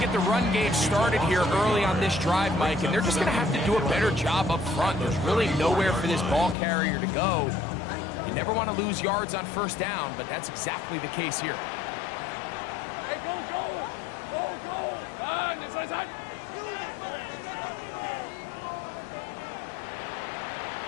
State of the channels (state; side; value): drops out; right; at 6.6 s